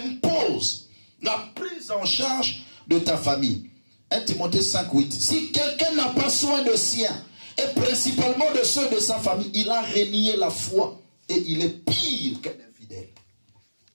la prise en charge de ta famille. 1 Timothée 5, 8. Si quelqu'un n'a pas soin de sien, et principalement de ceux de sa famille, il a renié la foi et il est pire qu'un infidèle.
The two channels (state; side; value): inverted; both; correlation -1.00